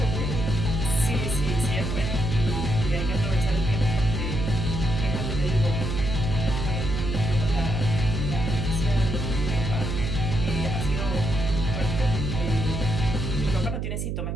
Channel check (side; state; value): right; noise; hum, 2 dB below the sound